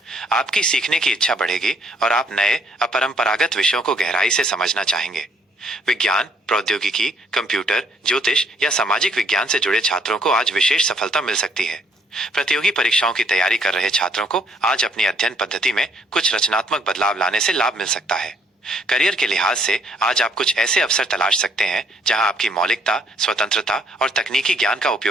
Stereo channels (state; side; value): normal; both; correlation 0.66